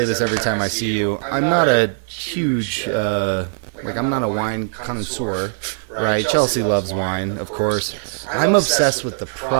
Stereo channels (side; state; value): left; silent; digital silence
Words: this every time I see you, I'm not a huge, I'm not a wine connoisseur, right? Chelsea loves wine, of course. I'm obsessed with the